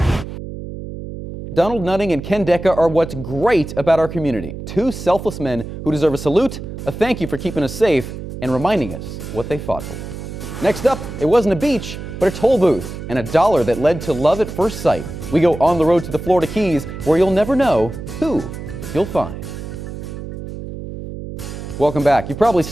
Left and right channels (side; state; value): right; noise; hum, 9 dB below the sound